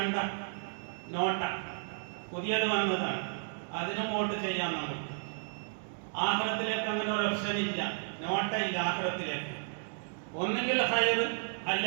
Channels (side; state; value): left; silent; digital silence